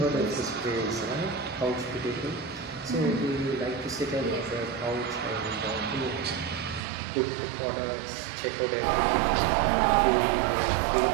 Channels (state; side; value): drops out; left; at 6.8 s